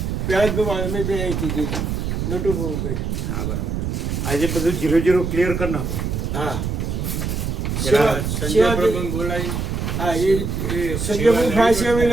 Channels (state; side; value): noise; right; rumble, 2 dB below the sound